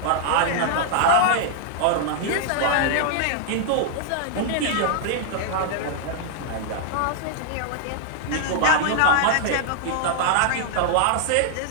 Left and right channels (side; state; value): both; different; correlation -0.01